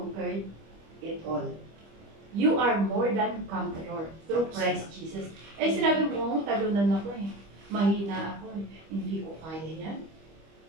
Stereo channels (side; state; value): left; late; 25 ms